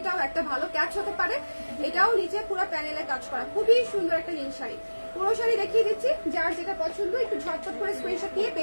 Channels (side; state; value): both; inverted; correlation -1.00